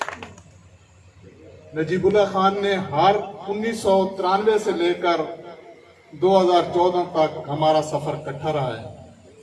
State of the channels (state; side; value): identical; both; correlation 1.00